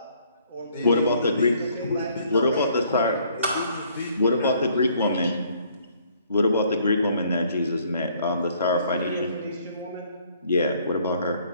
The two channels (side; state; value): both; inverted; correlation -0.63